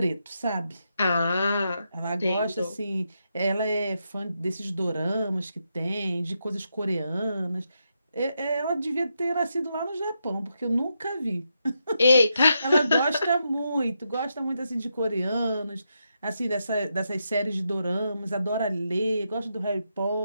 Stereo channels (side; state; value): both; inverted; correlation -0.83